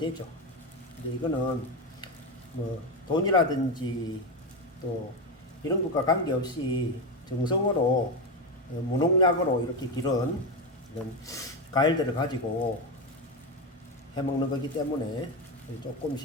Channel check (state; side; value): normal; both; correlation 0.13